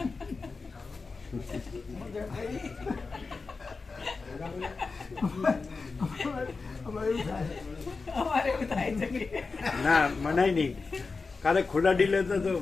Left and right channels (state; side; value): quieter; right; 4.3 dB